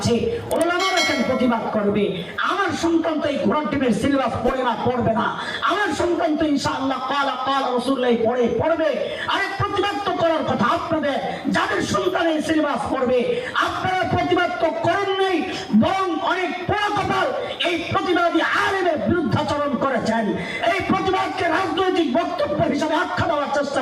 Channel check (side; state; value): both; identical; correlation 1.00